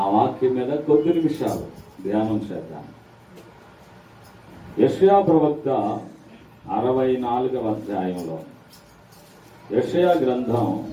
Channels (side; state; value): both; identical; correlation 1.00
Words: వాక్యం మీద కొద్ది నిమిషాలు ధ్యానం చేద్దాం. యెషయా ప్రవక్త 64వ అధ్యాయంలో, యెషయా గ్రంథం